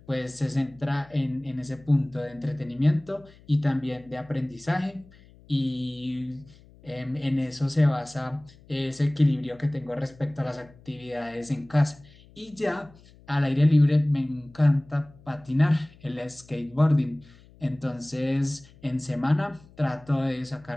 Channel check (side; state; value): left; noise; hum, 25 dB below the sound